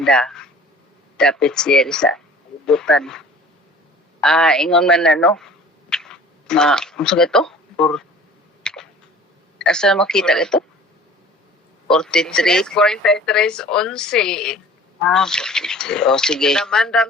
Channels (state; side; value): normal; both; correlation 0.46